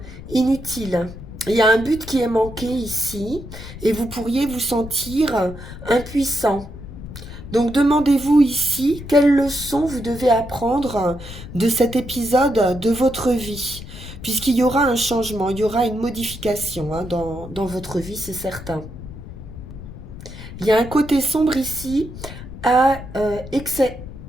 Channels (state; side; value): noise; left; rumble, 13 dB below the sound